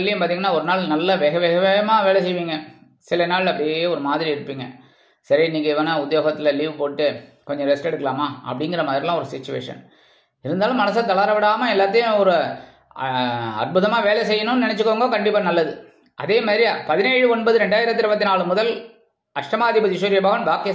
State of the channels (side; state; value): both; identical; correlation 1.00